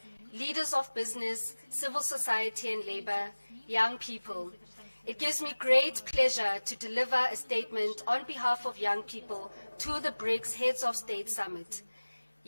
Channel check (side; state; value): both; inverted; correlation -1.00